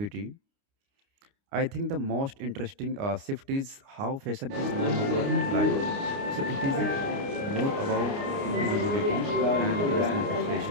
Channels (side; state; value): left; late; 29 ms